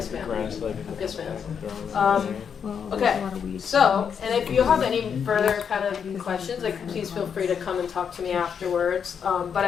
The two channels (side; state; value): right; quieter; 7.2 dB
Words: ma'am. Yes, ma'am. Well, there's Okay, a lot of weeds. so, and if you have any further kind of questions, like please feel free to come and talk to me afterwards. But